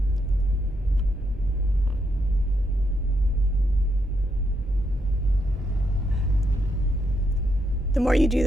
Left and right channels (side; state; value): both; normal; correlation 0.79